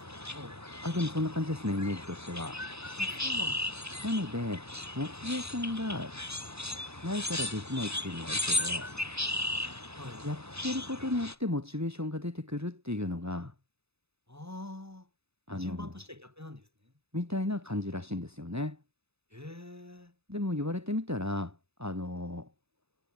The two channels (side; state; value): left; late; 0.79 ms